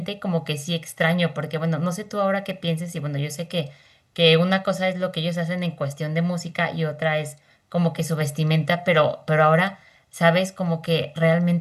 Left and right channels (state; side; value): identical; both; correlation 1.00